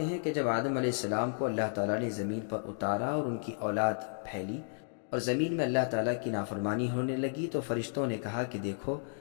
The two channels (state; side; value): silent; right; digital silence